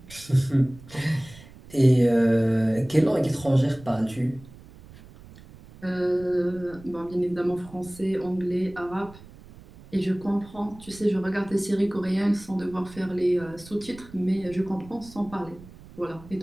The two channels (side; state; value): right; noise; rumble, 20 dB below the sound